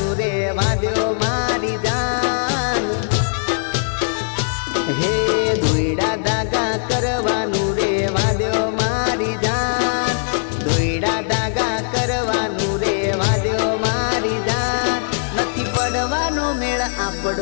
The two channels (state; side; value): silent; right; digital silence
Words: રે વાદ્યો મારી જાન હે દોયડા ધાગા કરવાનું રે વાદ્યો મારી જાન દોયડા ધાગા કરવાનું રે વાદ્યો મારી જાન નથી પડવાનો મેળ